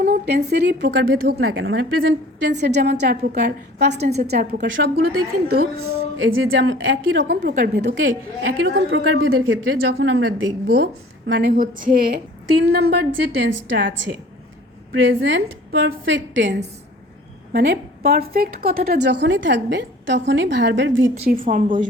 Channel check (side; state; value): both; normal; correlation 0.48